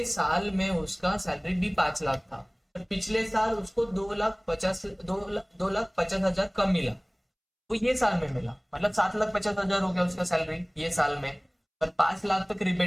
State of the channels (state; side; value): identical; both; correlation 1.00